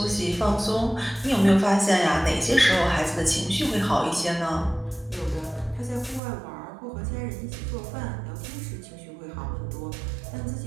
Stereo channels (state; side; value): drops out; left; at 6.2 s